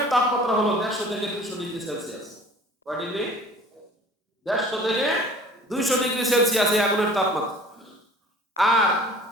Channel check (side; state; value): both; normal; correlation 0.47